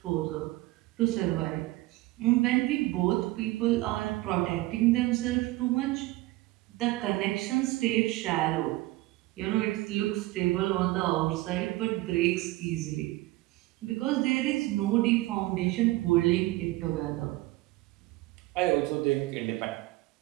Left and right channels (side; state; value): left; quieter; 19.0 dB